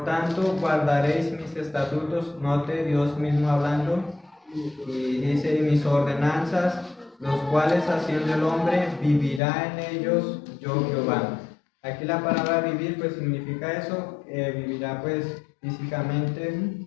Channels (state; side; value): drops out; right; at 9.4 s